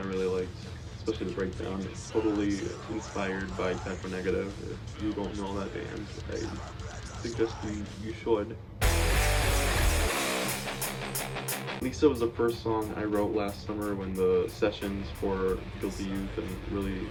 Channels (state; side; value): identical; both; correlation 1.00